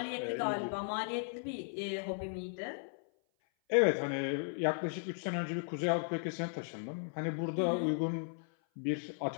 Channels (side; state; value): right; silent; 54 dB below the other